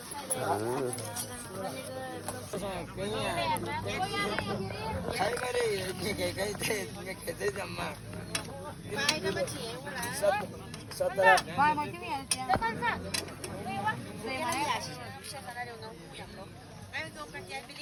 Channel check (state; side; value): identical; both; correlation 1.00